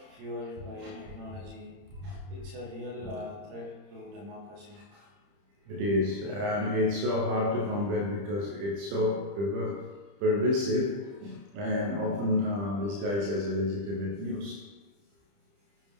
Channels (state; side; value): late; left; 30 ms